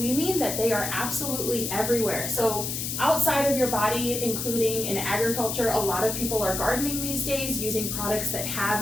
we mean that they are absolutely everywhere. So outside of your body, including in agriculture, a lot of people are gardening these days using products that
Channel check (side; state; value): left; noise; hiss, 3 dB below the sound